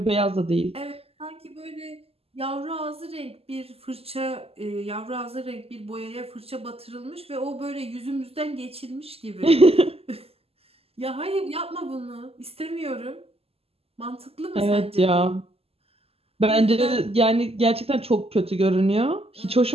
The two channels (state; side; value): late; left; 0.29 ms